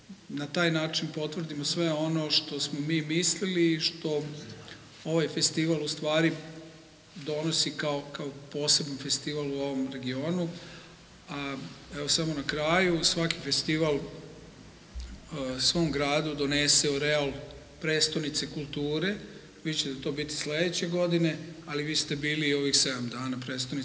na taj način potvrdimo sve ono što smo mi mislili i što ovaj festival u stvari donosi kao poseban festival u ovom regionu. A evo samo na kraju, svaki festival svom gradu donese oreal prestonice kulture. Vi ćete to biti sledeće godine, ali vi ste bili i ovih 7 dana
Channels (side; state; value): both; identical; correlation 1.00